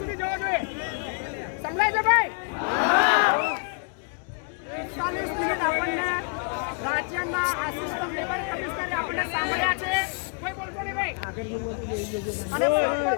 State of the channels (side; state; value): right; quieter; 38.4 dB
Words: મિનિટ આપણને રાજ્યના આસિસ્ટન્ટ લેબર કમિશનરે આપણને સાંભળ્યા છે. કોઈ બોલતો નહીં ભાઈ. અને પ્રોપર